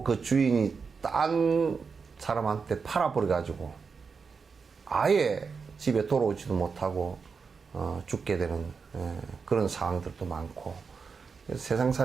그 주인이 딴 사람한테 팔아버려 가지고 아예 집에 돌아오지도 못하고 죽게 되는 그런 상황들도 많고.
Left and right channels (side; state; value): left; quieter; 5.3 dB